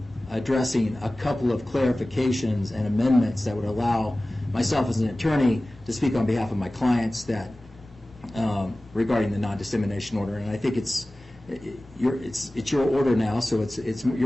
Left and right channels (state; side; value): normal; both; correlation 0.97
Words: addressing a couple of clarifications and amendments that would allow myself as an attorney to speak on behalf of my clients that regarding the non-dissemination order, and I think it's your order now, so